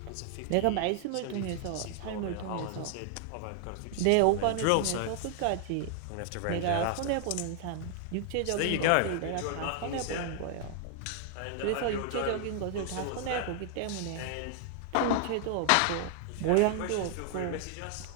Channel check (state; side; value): different; both; correlation 0.00